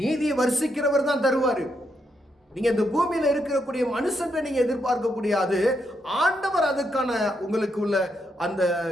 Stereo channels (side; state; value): both; normal; correlation 0.80